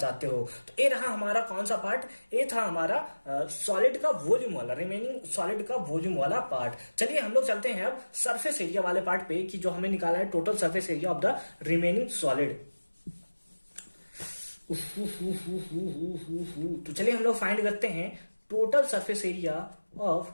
हो। तो ये रहा हमारा कौन सा पार्ट, ये था हमारा सॉलिड का वॉल्यूम वाला, रिमेनिंग सॉलिड का वॉल्यूम वाला पार्ट। चलिए हम लोग चलते हैं अब सरफेस एरिया वाले पार्ट पे, कि जो हमें निकाला है total surface area of the remaining solid. तो चलिए हम लोग फाइंड करते हैं total surface area of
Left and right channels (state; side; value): inverted; both; correlation -1.00